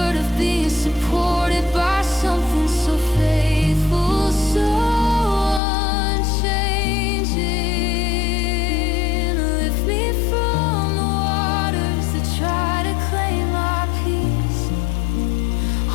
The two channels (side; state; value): right; drops out; at 5.6 s